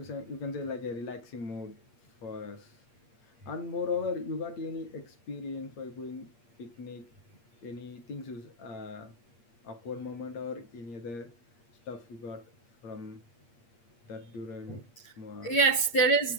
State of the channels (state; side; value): late; right; 8.5 ms